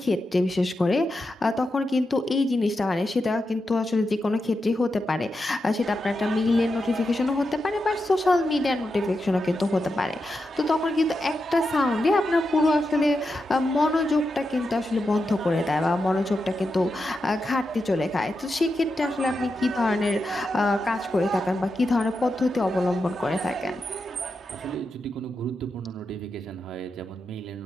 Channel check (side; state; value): both; normal; correlation 0.88